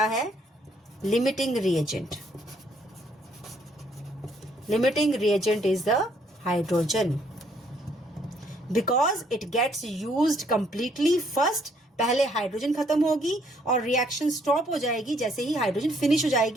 है? Limiting reagent. Limiting reagent is the hydrogen because it gets used completely first. पहले हाइड्रोजन खत्म होगी और रिएक्शन स्टॉप हो जाएगी, जैसे ही हाइड्रोजन फिनिश हो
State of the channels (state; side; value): normal; both; correlation 0.67